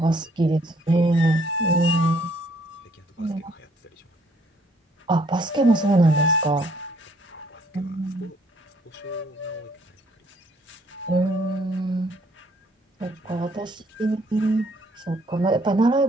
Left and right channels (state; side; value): normal; both; correlation 0.64